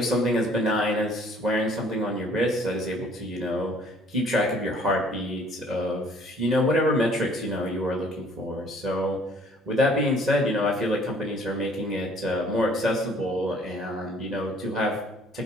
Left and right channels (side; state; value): both; normal; correlation 0.57